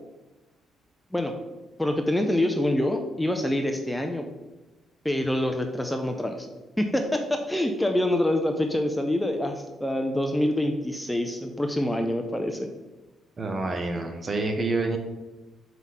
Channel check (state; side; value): normal; both; correlation 0.88